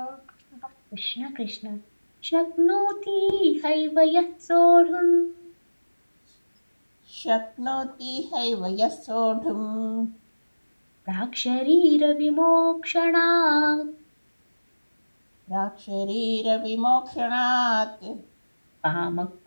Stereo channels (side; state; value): both; inverted; correlation -1.00